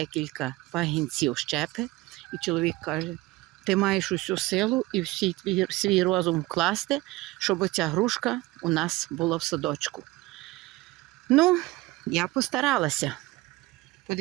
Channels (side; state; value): left; quieter; 19.9 dB